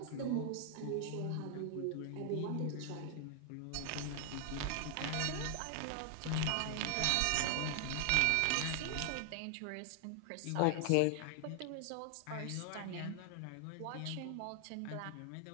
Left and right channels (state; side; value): different; both; correlation 0.00